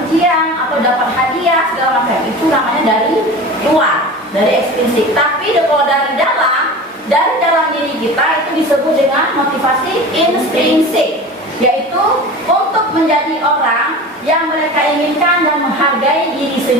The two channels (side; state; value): both; normal; correlation 0.34